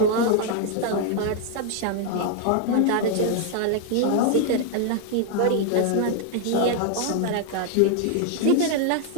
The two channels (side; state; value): both; different; correlation 0.00